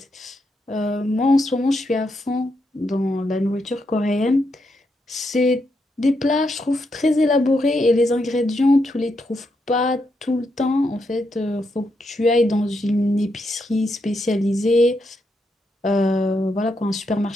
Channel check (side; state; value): both; normal; correlation 0.81